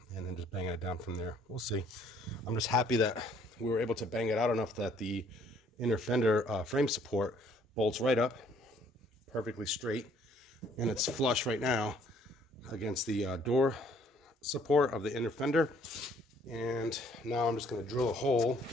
and then just banging it down from there. We'll see. I'm just happy that we were able to bang it out enough that the inner fender frame support bolts right up perfectly straight, and it's flush right now against the door support of the inner fender. And now I'm just going to drill a hole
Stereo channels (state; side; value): normal; both; correlation 0.62